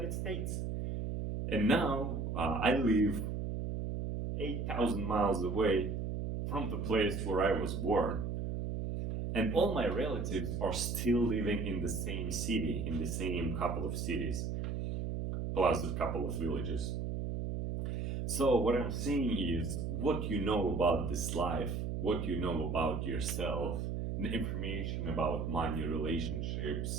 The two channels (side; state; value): right; noise; hum, 2 dB below the sound